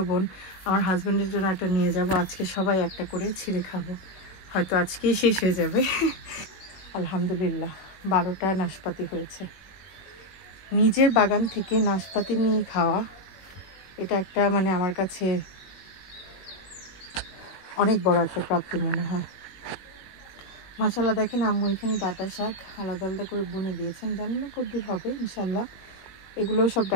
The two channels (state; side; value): late; right; 21 ms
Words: বোন, আমার হাজব্যান্ডের জন্য একটা নিয়ে যাব। আজকে সবাই একটা করে ছিঁড়ে খাবো, হয়তো আজকেই শেষ হয়ে যাবে। আলহামদুলিল্লাহ 12টা নাশপাতি হয়েছে। নিজের বাগান থেকে নাশপাতি নিয়ে খাওয়া, এটা একটা মানে আমার কাছে অনেক বড় একটা প্রাপ্তি মনে হয়। মাশাআল্লাহ, দেখেন আম্মু এখানে ডাঁটা শাক আলাদা আলাদা করে বুনে দিয়েছেন, জানি না কতদূর হবে, ইনশাল্লাহ। এগুলো সব